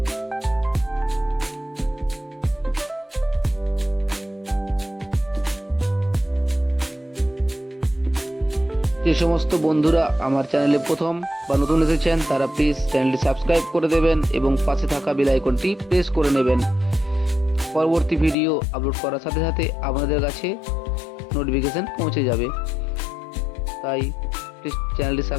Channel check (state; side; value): drops out; right; at 18.4 s